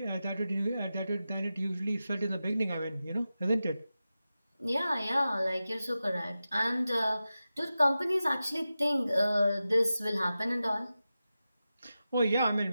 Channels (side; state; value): both; inverted; correlation -0.93